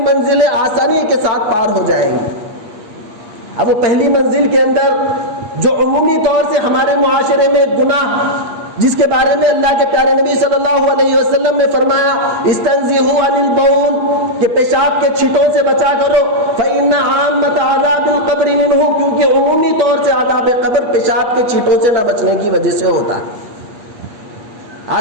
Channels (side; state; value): left; late; 8.3 ms